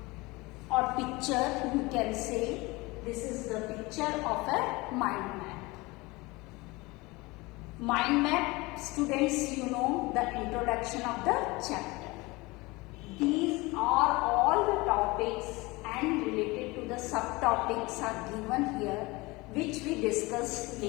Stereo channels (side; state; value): right; quieter; 23.2 dB